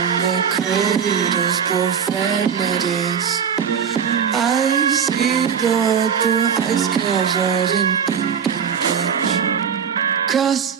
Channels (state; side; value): quieter; left; 7.3 dB